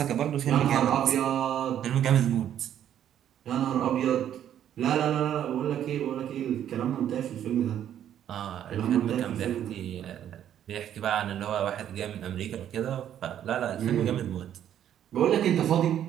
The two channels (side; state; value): left; quieter; 10.4 dB